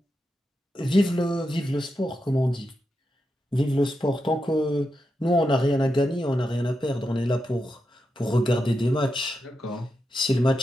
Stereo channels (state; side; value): normal; both; correlation 0.87